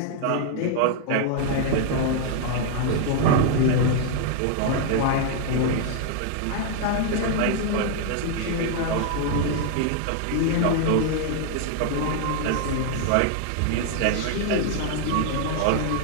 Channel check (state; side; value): different; both; correlation 0.00